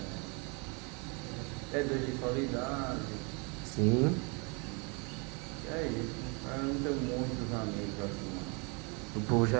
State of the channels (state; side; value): quieter; left; 32.1 dB